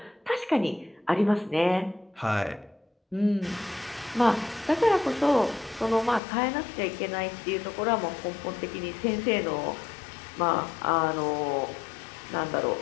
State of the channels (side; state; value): right; drops out; at 6.2 s